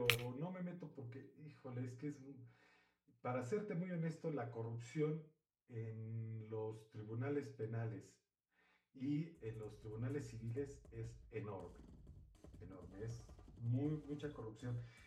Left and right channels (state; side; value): identical; both; correlation 1.00